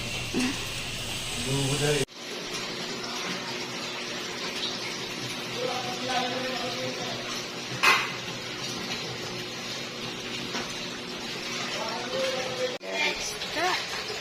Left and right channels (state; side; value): identical; both; correlation 1.00